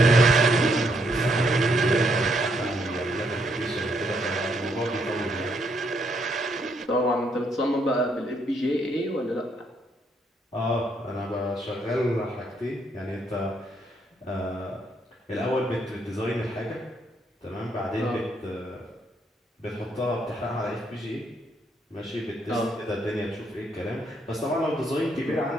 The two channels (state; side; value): normal; both; correlation 0.73